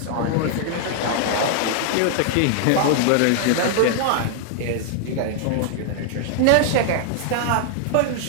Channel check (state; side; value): different; both; correlation 0.00